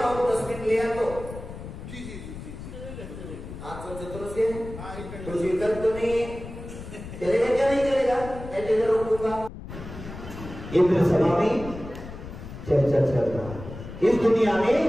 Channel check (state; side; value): noise; left; rumble, 12 dB below the sound